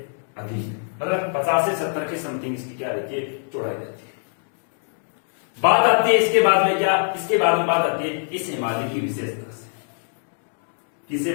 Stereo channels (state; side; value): silent; right; digital silence